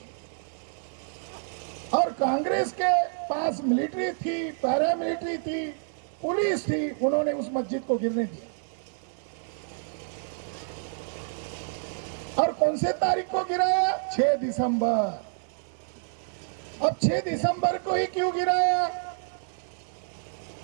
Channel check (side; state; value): left; silent; 59 dB below the other